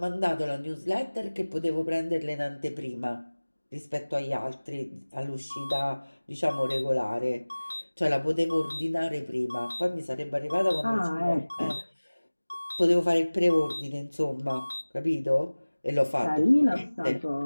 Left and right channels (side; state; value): both; inverted; correlation -1.00